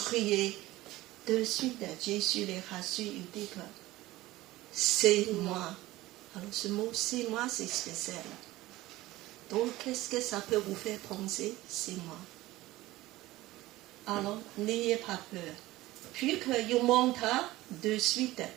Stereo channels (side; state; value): left; quieter; 17.7 dB